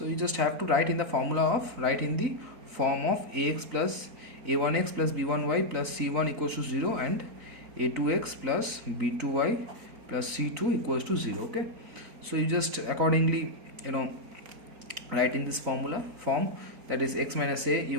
you just have to write in the formula of, write in the form of ax plus a1x plus b1y plus c1 equals to 0 and a2x plus b2y plus c2 equals to 0. Okay, so you just accordingly write in this formula form, that is x minus a,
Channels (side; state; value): left; late; 3.9 ms